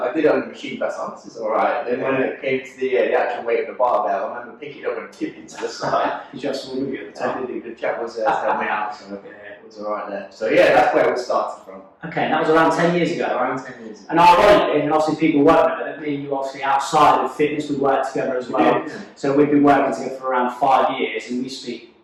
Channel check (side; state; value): both; identical; correlation 1.00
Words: did it on the machine first, this is alright. Then when it came to the actual weight of the barbell, I remember picking it up and tipping to the side. You just swung with you at the time. The chap was helping me out, so it was alright there. So yeah, that's where it started from. Okay, and that was around 10 years ago. Around 10 years ago. And ironically, and obviously people won't know that me and you obviously outside of fitness, we work together as well. So we've been working together for around 5 years, and we speak,